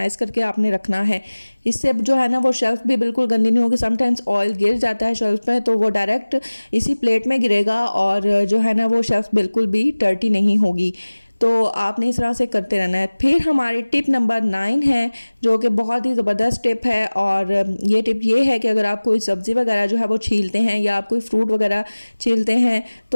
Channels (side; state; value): both; inverted; correlation -1.00